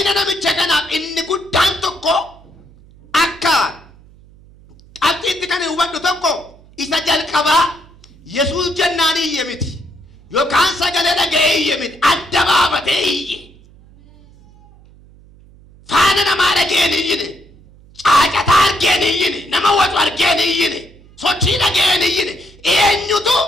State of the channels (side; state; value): right; noise; hum, 25 dB below the sound